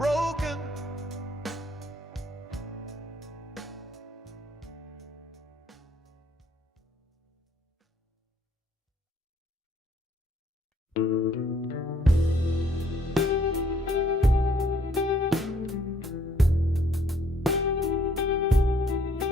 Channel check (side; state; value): both; normal; correlation 0.64